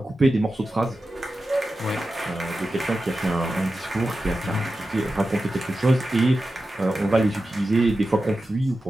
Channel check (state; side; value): normal; both; correlation 0.92